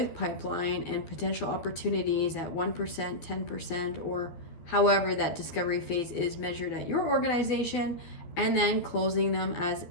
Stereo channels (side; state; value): right; late; 12 ms